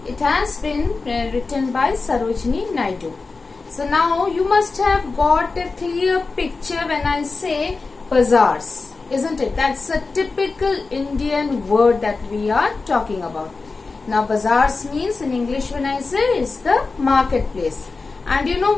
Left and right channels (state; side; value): quieter; right; 4.1 dB